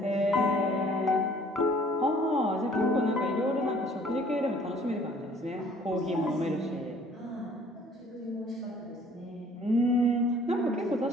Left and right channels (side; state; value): both; normal; correlation 0.56